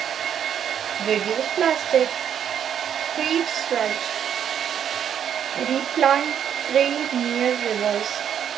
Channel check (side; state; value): left; quieter; 9.0 dB